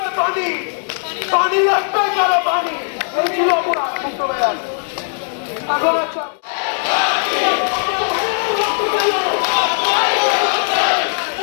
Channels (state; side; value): silent; right; 67 dB below the other